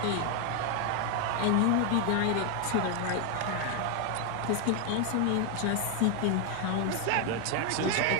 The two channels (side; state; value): both; different; correlation 0.01